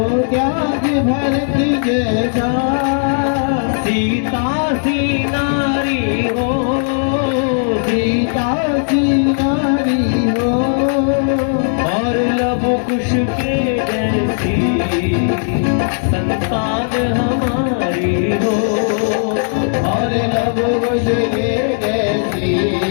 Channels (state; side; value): silent; right; 61 dB below the other